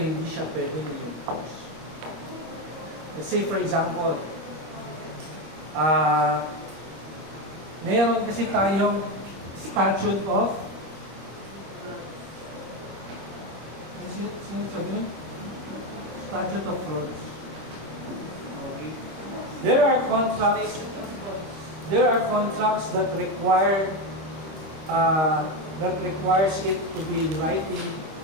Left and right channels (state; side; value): late; left; 25 ms